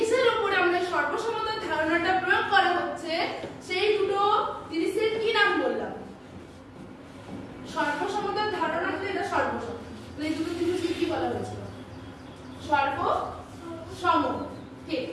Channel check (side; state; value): both; identical; correlation 1.00